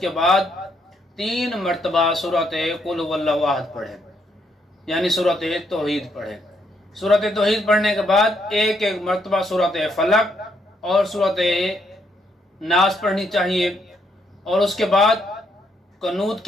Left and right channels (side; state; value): both; normal; correlation 0.74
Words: بعد 3 مرتبہ سورۃ قل هو اللہ احد پڑھے، یعنی سورۃ توحید پڑھے۔ سورۃ توحید پڑھنے کے بعد ایک مرتبہ سورۃ فلق اور سورۃ ناس پڑھنی چاہیے، اور اس کے بعد قنوت